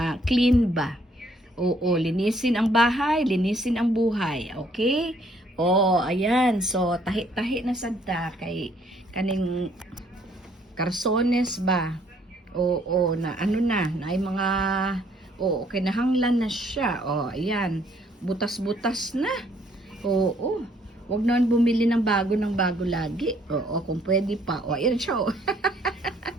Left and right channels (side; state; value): both; normal; correlation 0.65